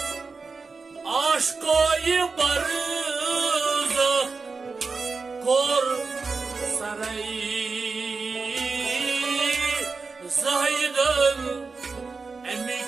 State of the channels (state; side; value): quieter; left; 4.4 dB